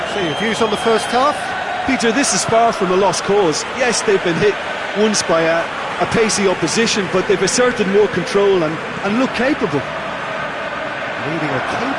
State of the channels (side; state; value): both; identical; correlation 1.00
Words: So your views on the first half? Peter, this is far from a lost cause. Yes, they've been hit once by a pacey opposition, but they've asserted more control and look capable. Leading a